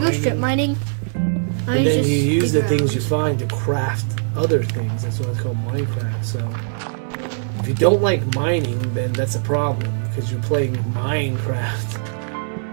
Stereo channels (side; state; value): left; silent; 65 dB below the other